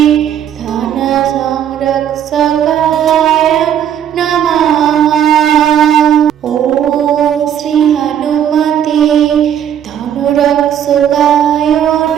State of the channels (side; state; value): left; quieter; 9.7 dB